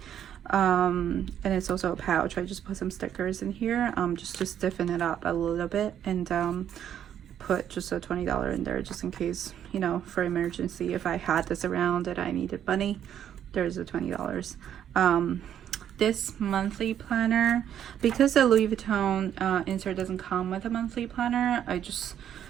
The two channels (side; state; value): left; quieter; 9.9 dB